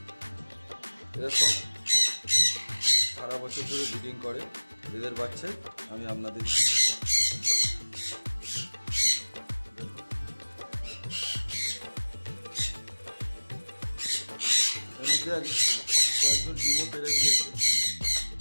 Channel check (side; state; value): both; inverted; correlation -1.00